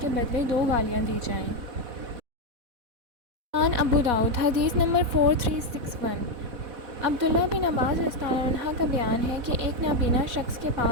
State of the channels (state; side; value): late; left; 4.1 ms